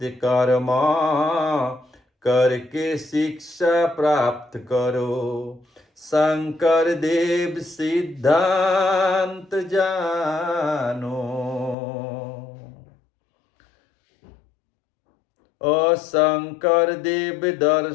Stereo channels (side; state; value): right; drops out; at 11.8 s